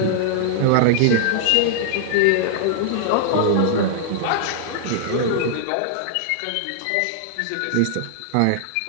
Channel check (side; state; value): both; different; correlation -0.01